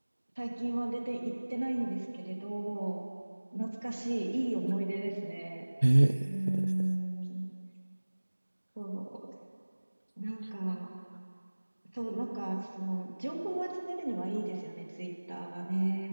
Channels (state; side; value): inverted; both; correlation -1.00